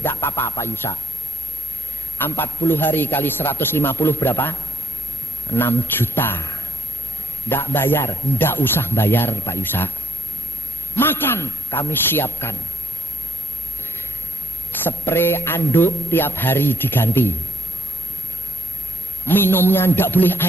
apa-apa Pak Yusa. 40 hari kali 150 berapa? 6 juta. Tidak bayar, tidak usah bayar Pak Yusa. Makan kami siapkan. Spray anduk tiap hari diganti. Minumnya tidak boleh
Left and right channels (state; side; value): normal; both; correlation 0.68